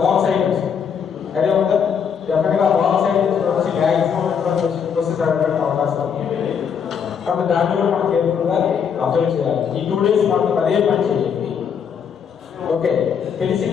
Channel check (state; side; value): quieter; right; 7.2 dB